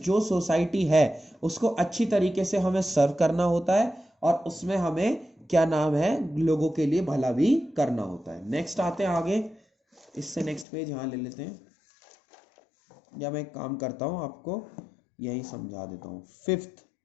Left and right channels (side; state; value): right; drops out; at 10.7 s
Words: सोसाइटी है उसको अच्छी तरीके से हमें सर्व करना होता है, और उसमें हमें क्या नाम है, लोगों के लिए भला भी करना होता है। नेक्स्ट आते हैं आगे, इससे नेक्स्ट पेज यहाँ ले लेते हैं, या मैं एक काम करता हूँ आपको यही समझा देता हूँ। फिफ्थ,